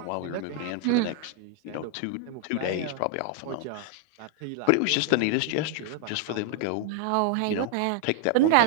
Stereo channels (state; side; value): different; both; correlation 0.00